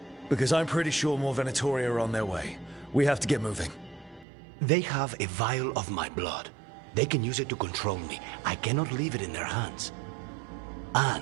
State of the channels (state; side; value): drops out; left; at 4.2 s